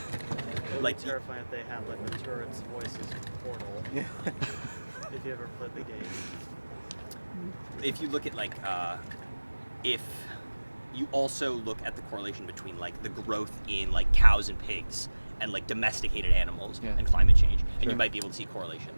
would Like, be terrifying if they had like the turret's voices in Portal. Yeah. If you ever played the game. if you look at like if you also look at the correlation between like the growth in like cows and pigs and like domesticated animals Yeah. and climate change, and Sure. you might be able to see correlation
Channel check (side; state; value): both; inverted; correlation -1.00